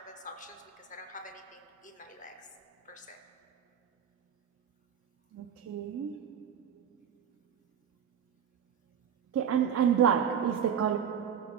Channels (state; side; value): quieter; left; 8.2 dB